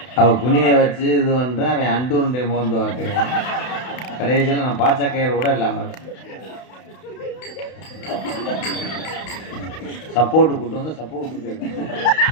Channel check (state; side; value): late; right; 32 ms